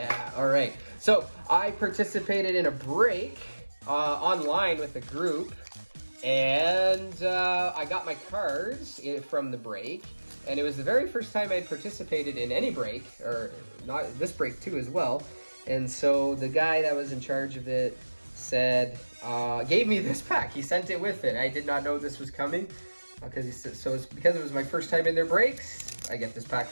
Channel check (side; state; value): both; inverted; correlation -1.00